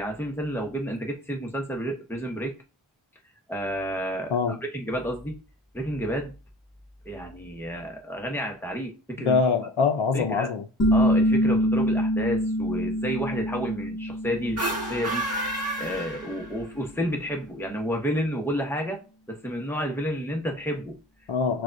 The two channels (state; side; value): normal; both; correlation 0.44